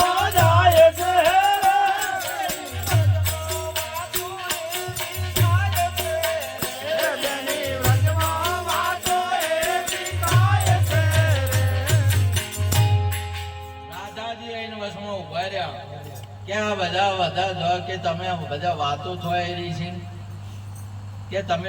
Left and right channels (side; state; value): both; identical; correlation 1.00